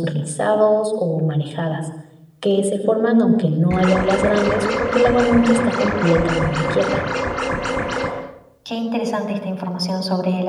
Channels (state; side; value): identical; both; correlation 1.00